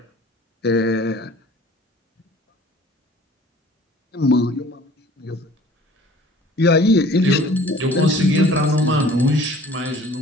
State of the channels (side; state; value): both; normal; correlation 0.49